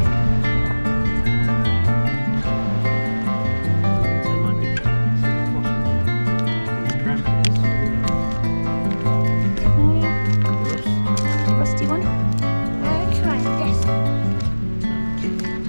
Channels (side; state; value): both; inverted; correlation -1.00